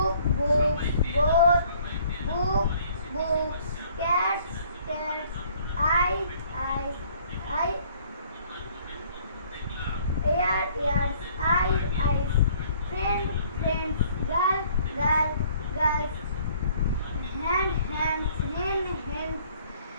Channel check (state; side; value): inverted; both; correlation -0.59